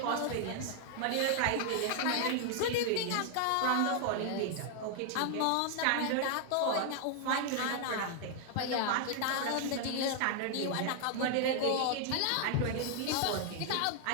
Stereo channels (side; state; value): both; different; correlation 0.00